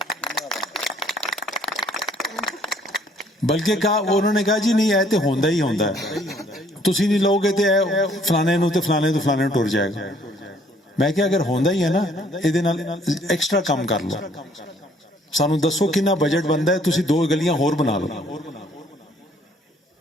بلکہ انہوں نے کہا جی نہیں اے تے ہوندا ہی ہوندا ہے، تسی نہیں لوگے تے فلانے نو تے فلانے تو فلانے ٹر جائے گا. میں کہ اگر ہوندا ہی ہے نا، ایدے نال ایکسٹرا کم کر لو، سانو دسو کنا بجٹ بندا ہے، تسی 2 گلیاں ہور بنا لو.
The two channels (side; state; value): both; normal; correlation 0.62